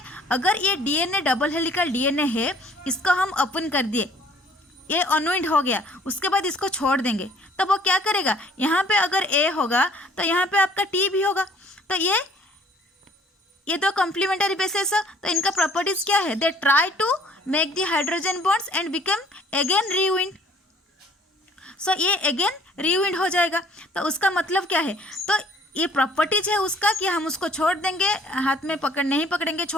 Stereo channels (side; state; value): both; normal; correlation 0.57